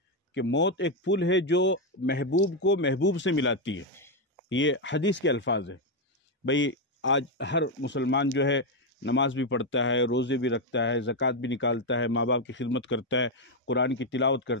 کہ موت ایک پل ہے جو محبوب کو محبوب سے ملاتی ہے۔ یہ حدیث کے الفاظ ہے۔ بھئی آج ہر مسلمان جو ہے نماز بھی پڑھتا ہے، روزے بھی رکھتا ہے، زکوٰۃ بھی نکالتا ہے، ماں باپ کی خدمت کرتا ہے، قرآن کی تلاوت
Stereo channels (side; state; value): both; normal; correlation 0.04